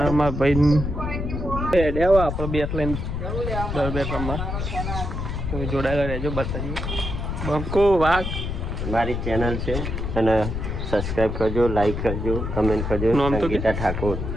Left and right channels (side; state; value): left; noise; rumble, 3 dB below the sound